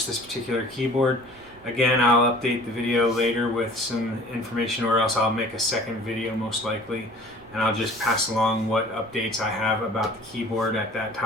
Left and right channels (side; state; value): right; noise; rumble, 26 dB below the sound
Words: this particular keyboard. Again, I'll update the video later with some information, or else I'll make a second video most likely, and I'll just pass along what updates I have about the keyboard at that